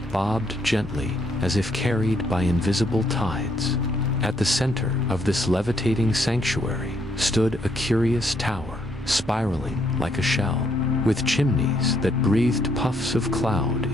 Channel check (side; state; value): both; normal; correlation 0.72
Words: bobbed gently, as if carried by invisible tides. At the center of this levitating sanctuary stood a curious tower, spiraling like a shell, with chimneys that breathed puffs of cloud